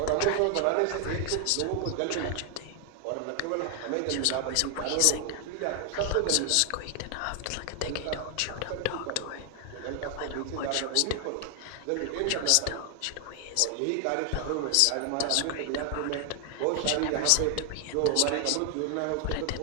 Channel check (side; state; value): both; different; correlation 0.00